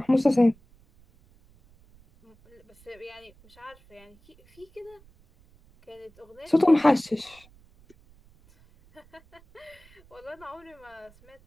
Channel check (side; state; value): right; noise; rumble, 28 dB below the sound